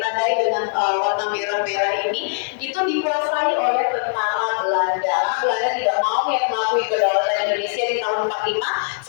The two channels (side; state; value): right; silent; 65 dB below the other